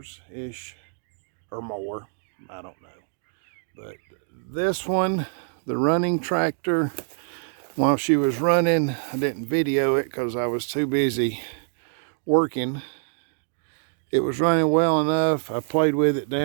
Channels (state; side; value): silent; left; digital silence